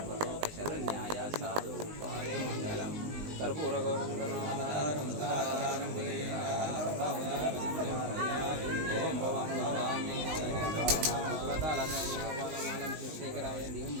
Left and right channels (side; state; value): left; late; 19 ms